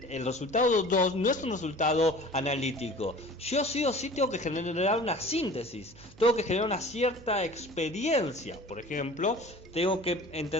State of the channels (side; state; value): right; noise; hum, 22 dB below the sound